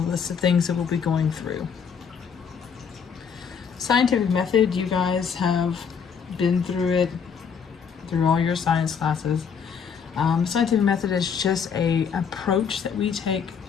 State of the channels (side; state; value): right; quieter; 6.7 dB